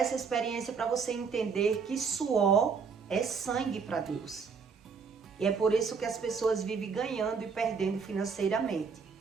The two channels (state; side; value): quieter; left; 5.6 dB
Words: experiência para você entender que suor é sangue para Deus. E é por isso que as pessoas vivem ganhando e perdendo financeiramente.